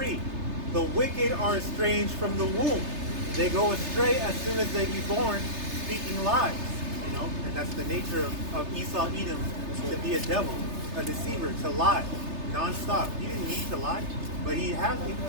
The wicked are estranged from the womb. They go astray as soon as they be born, speaking lies. You know, and that's the nature of Esau Edom, to be a devil, a deceiver, to lie non-stop. He didn't need to lie, but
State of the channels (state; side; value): late; left; 3.3 ms